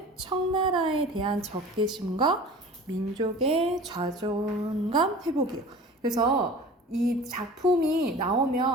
청나라에 대한 적개심과 민족의 자존감 회복이에요. 그래서 이 작품이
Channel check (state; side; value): normal; both; correlation 0.40